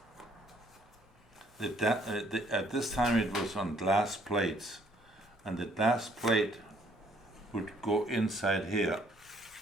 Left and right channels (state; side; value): normal; both; correlation 0.64